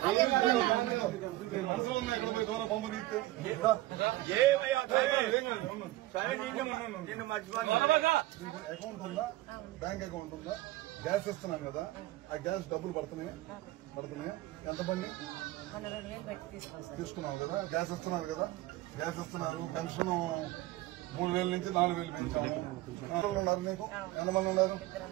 మనసులో ఉన్నాయి ఇక్కడ పోయి దూరం పంపు తీస్తే అకౌంట్ ఉందా బ్యాంక్ అకౌంట్ ఉందా గ్యాస్ ఇస్తున్నాం కదా ఆ గ్యాస్ డబ్బులు పడుతున్నాయా ఎంత బండి తీసుకున్నాం కదా గ్యాస్ ఇస్తున్నారు కదా గ్యాస్ ఇస్తున్నారు పెన్షన్ 3000 నుంచి 4000 పెంచాము ఉన్నారు నీకు ఎంతమంది ఉన్నారు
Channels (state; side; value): quieter; left; 17.3 dB